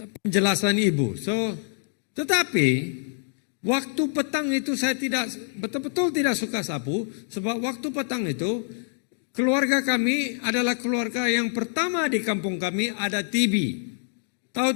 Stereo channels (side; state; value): right; silent; digital silence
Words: penjelasan ibu. Tetapi waktu petang itu saya betul-betul tidak suka sapu. Sebab waktu petang itu keluarga kami adalah keluarga yang pertama di kampung kami ada TV. Tahu